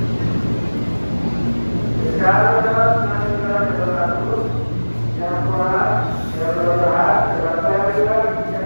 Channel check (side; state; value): both; inverted; correlation -1.00